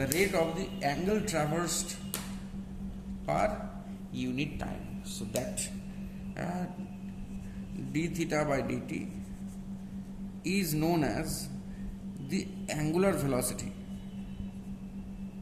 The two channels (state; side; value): identical; both; correlation 1.00